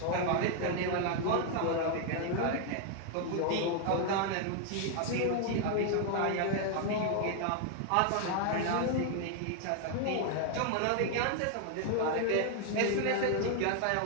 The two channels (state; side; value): different; both; correlation 0.00